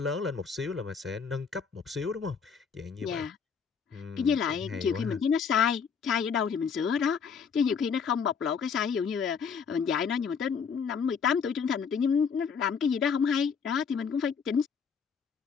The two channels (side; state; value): right; quieter; 6.3 dB